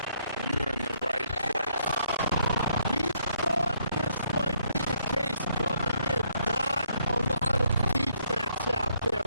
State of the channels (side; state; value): both; inverted; correlation -0.71